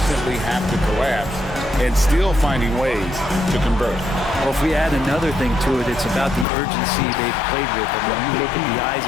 have to collapse and still finding ways to convert. Well, if we add another thing to it, it's about the urgency they've played with. And when you look at the eyes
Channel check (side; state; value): right; drops out; at 6.5 s